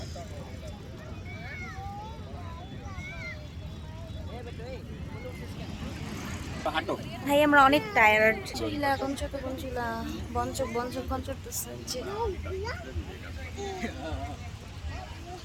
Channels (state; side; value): identical; both; correlation 1.00